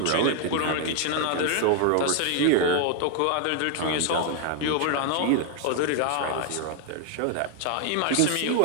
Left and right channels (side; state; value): both; different; correlation 0.00